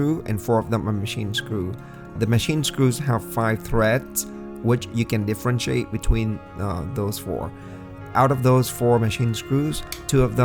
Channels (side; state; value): both; identical; correlation 1.00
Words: and 4 of them are machine screw. The machine screws have 5 threads, which you can differentiate between those 4. Out of those 4 machine screws, 2 of